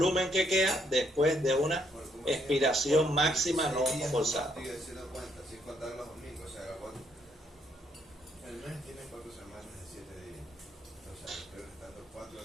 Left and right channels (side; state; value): both; normal; correlation 0.72